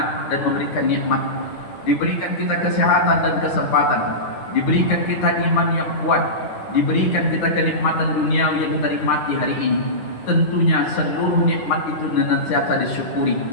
dan memberikan nikmat. Diberikan kita kesehatan dan kesempatan, diberikan kita iman yang kuat, diberikan kita kenikmatan duniawi yang kita nikmati hari ini. Tentunya seluruh nikmat itu senantiasa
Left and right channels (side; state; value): right; late; 9.9 ms